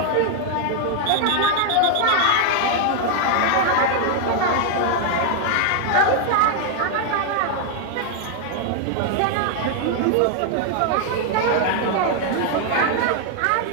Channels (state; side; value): different; both; correlation 0.00